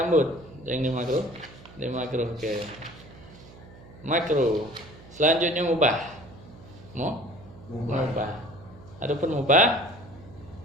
Yang di makruh ke makruh. Selanjutnya mubah. Mubah. Adapun mubah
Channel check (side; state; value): right; noise; hum, 20 dB below the sound